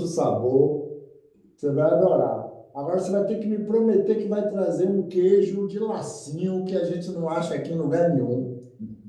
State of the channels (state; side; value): identical; both; correlation 1.00